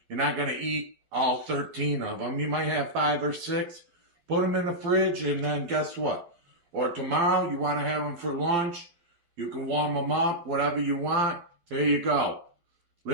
You're not going to eat all 13 of them. You might have 5 or 6. Put them in the fridge, and then guess what? Or tomorrow, you want to have them for lunch. You can warm them up, whatever you want. There you go.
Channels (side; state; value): left; late; 12 ms